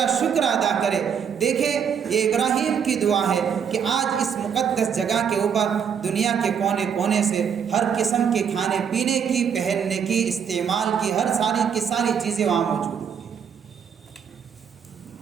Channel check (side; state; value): left; quieter; 7.5 dB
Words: شکر ادا کرے۔ دیکھیں یہ ابراہیم کی دعا ہے کہ آج اس مقدس جگہ کے اوپر دنیا کے کونے کونے سے ہر قسم کے کھانے پینے کی، پہننے کی، استعمال کی، ہر ساری چیزیں وہاں موجود ہیں۔